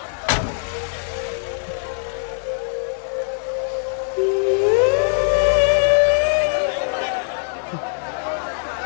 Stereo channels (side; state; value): right; silent; 65 dB below the other